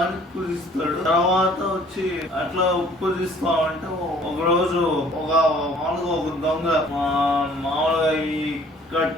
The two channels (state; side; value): normal; both; correlation 0.56